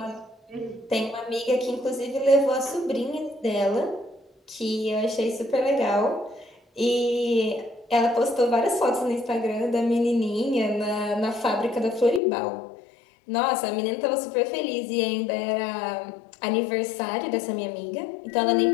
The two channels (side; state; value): right; drops out; at 12.2 s